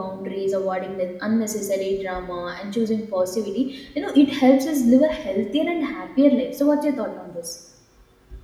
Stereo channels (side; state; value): both; identical; correlation 1.00